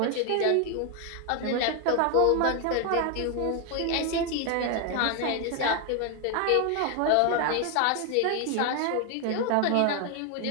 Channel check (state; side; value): different; both; correlation 0.01